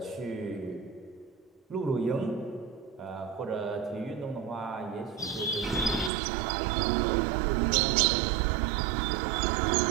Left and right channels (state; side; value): drops out; left; at 6.1 s